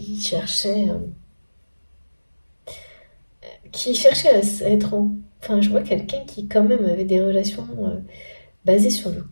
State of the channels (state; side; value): inverted; both; correlation -1.00